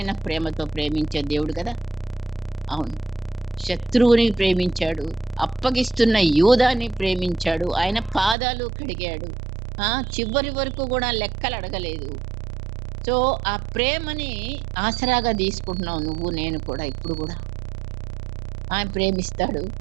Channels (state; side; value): drops out; left; at 8.3 s